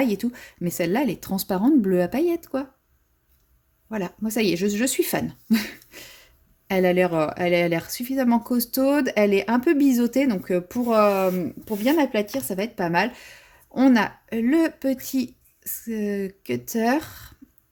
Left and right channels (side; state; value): both; identical; correlation 1.00